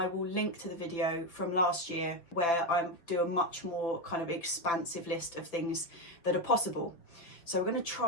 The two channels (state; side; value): late; right; 5.9 ms